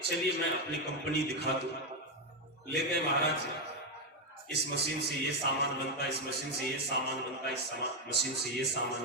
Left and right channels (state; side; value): normal; both; correlation 0.06